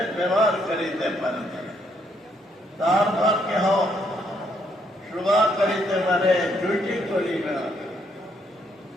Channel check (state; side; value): normal; both; correlation 0.72